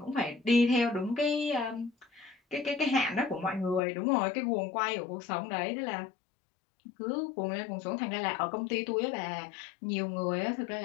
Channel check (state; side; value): drops out; right; at 3.8 s